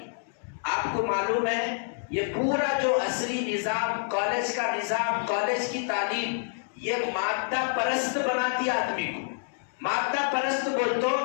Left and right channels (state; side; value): silent; right; digital silence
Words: آپ کو معلوم ہے یہ پورا جو عصری نظام، کالج کا نظام، کالج کی تعلیم، یہ مادہ پرست بناتی آدمی کو۔ مادہ پرست بول تو